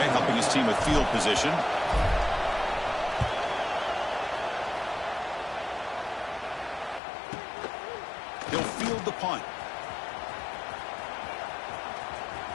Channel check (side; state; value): right; drops out; at 7.0 s